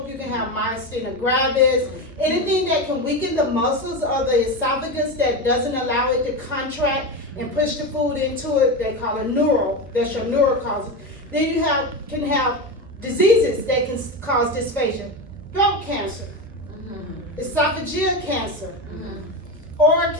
You can have myasthenia gravis. Anything that can weaken the muscles of the esophagus that doesn't allow it to contract and push the food into it, they call it neural. That's your neural causes. Then you can have diseases that can cause dysphagia. Throat cancer, esophageal cancer, oral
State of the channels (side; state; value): both; normal; correlation 0.18